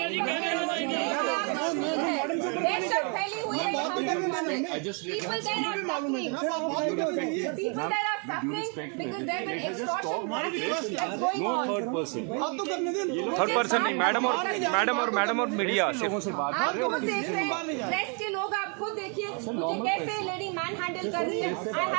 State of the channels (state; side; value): quieter; left; 37.8 dB